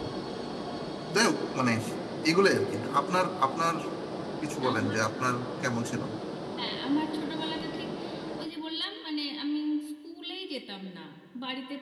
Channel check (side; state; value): both; identical; correlation 1.00